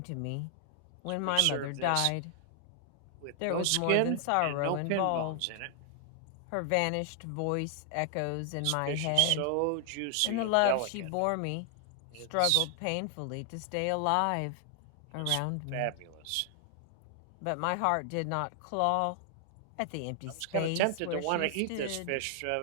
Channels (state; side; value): different; both; correlation 0.00